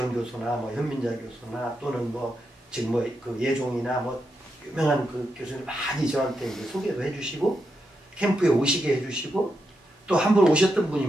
교수나 뭐 현민자 교수나 또는 뭐 지금 뭐 그 예종이나 뭐 유명한 그 교수님 많이 저한테 이제 소개도 해주시고 캠프에 오시게 해주시고 또 한 번 오셨던 분이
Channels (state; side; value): normal; both; correlation 0.85